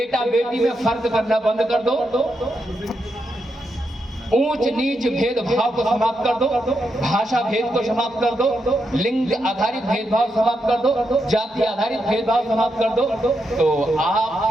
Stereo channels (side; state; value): both; normal; correlation 0.83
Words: बेटी में फर्क करना बंद कर दो, ऊंच नीच भेदभाव को समाप्त कर दो, भाषा भेद को समाप्त कर दो, लिंग आधारित भेदभाव समाप्त कर दो, जाति आधारित भेदभाव समाप्त कर दो, तो